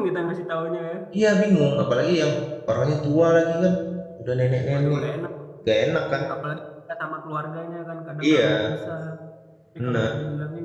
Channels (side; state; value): both; identical; correlation 1.00